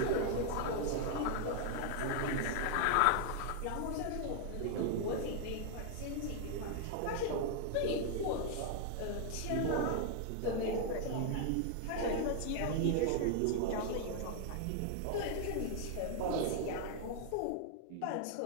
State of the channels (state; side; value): different; both; correlation 0.00